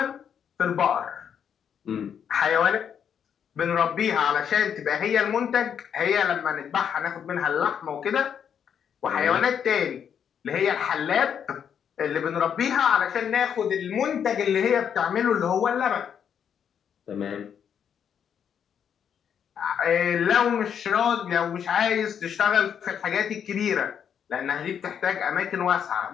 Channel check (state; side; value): quieter; right; 8.1 dB